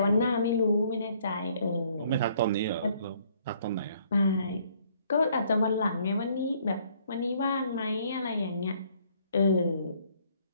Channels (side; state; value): both; inverted; correlation -0.64